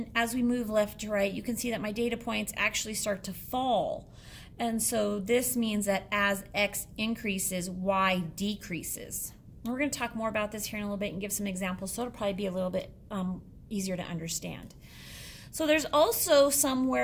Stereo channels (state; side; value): identical; both; correlation 1.00